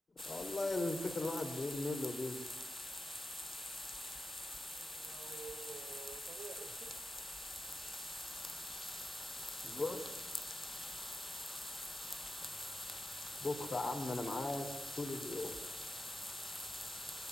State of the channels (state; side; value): normal; both; correlation 0.90